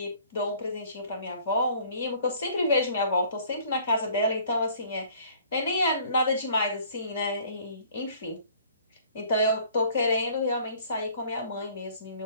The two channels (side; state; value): both; inverted; correlation -0.54